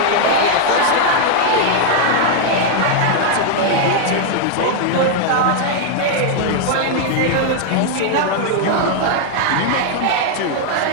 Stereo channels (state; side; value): different; both; correlation 0.00